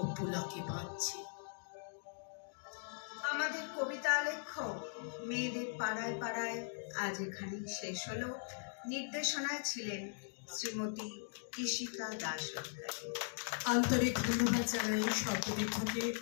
পুলকে বাঁধছে। আমাদের কবিতা আলেখ্য মেয়েদের পাড়ায় পাড়ায় আজ এখানেই শেষ হলো। নির্দেশনায় ছিলেন শ্রীমতী কৃষিকা দাস। আন্তরিক ধন্যবাদ জানাই সর্বদিক থেকে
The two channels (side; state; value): right; silent; digital silence